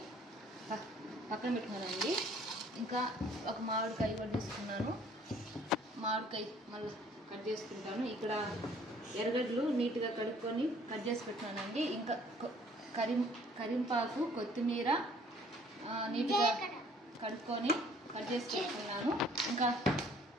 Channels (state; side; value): normal; both; correlation 0.57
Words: పక్కన పెట్టుకున్నానండి. ఇంకా ఒక మామిడికాయ కూడా తీసుకున్నాను. మామిడికాయ మళ్ళీ కట్ చేసుకుంటాను. ఇక్కడ ఎర్రగడ్డలు నీట్గా కడుక్కొని కట్ చేసి పెట్టానండి. ఇంకా కరింపాకు, కొత్తిమీర నీట్గా కడుక్కొని కట్ చేసి పెట్టుకున్నాను.